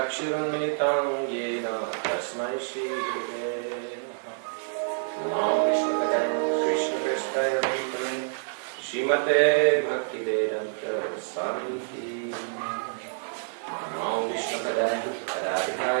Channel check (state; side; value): silent; left; 60 dB below the other